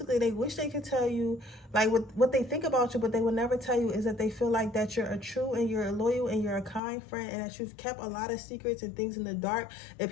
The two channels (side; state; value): right; drops out; at 6.8 s